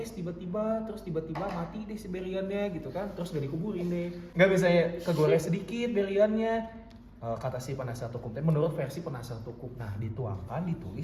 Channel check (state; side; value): identical; both; correlation 1.00